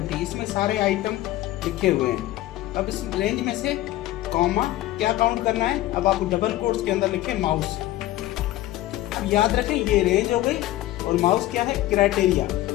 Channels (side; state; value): right; quieter; 15.7 dB